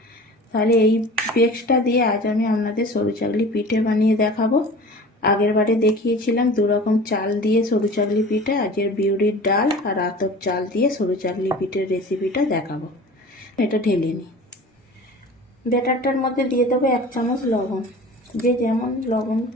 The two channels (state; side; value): normal; both; correlation 0.40